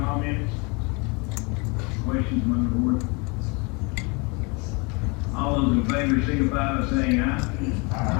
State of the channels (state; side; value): quieter; right; 30.0 dB